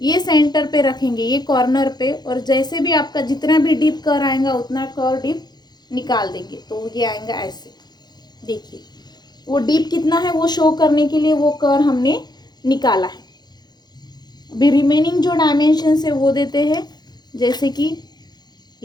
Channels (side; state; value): right; late; 0.20 ms